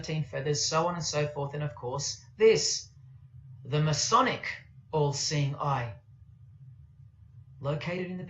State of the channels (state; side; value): identical; both; correlation 1.00